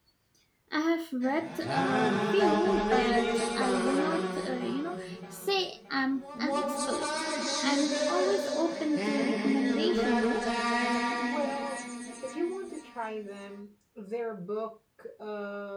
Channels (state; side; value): identical; both; correlation 1.00